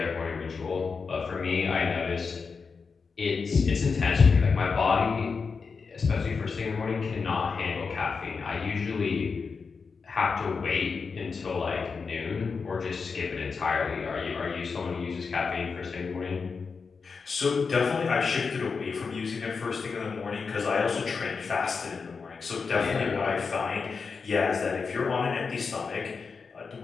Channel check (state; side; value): quieter; right; 5.1 dB